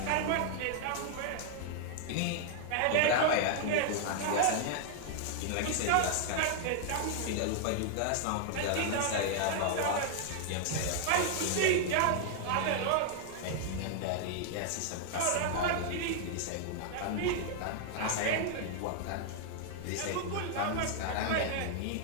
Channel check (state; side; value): different; both; correlation 0.00